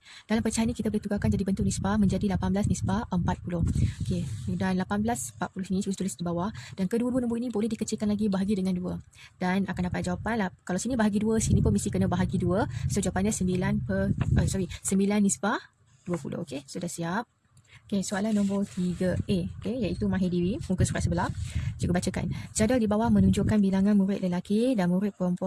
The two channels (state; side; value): identical; both; correlation 1.00